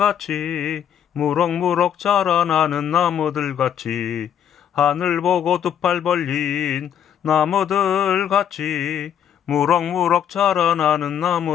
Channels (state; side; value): quieter; right; 9.2 dB